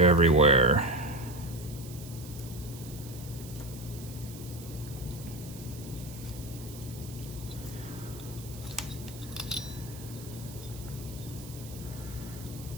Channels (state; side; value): noise; right; hiss, 16 dB below the sound